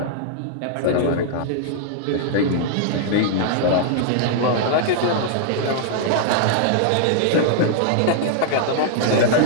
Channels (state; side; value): different; both; correlation -0.01